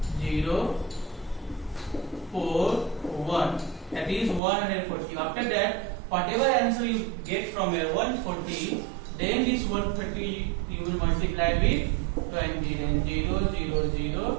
0 4 1, that is 140. After that, whatever answer you get from here 140, then this 130 you will multiply with 20, then 0 0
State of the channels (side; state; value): left; drops out; at 4.4 s